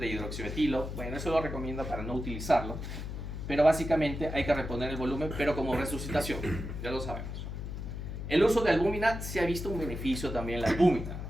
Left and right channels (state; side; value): noise; left; hum, 6 dB below the sound